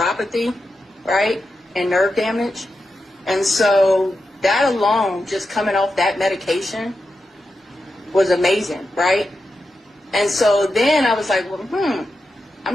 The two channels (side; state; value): both; normal; correlation 0.89